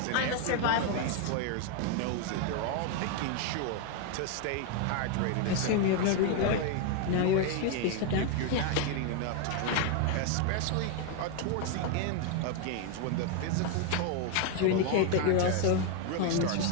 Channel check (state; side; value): different; both; correlation 0.01